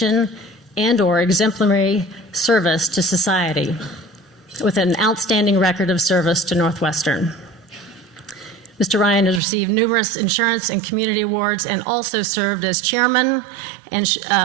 and/or exemplary service to society with an outstanding record of service to Northwestern. Mr. Ryan has received numerous insurance and community awards and also served as chairman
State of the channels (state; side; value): drops out; left; at 9.4 s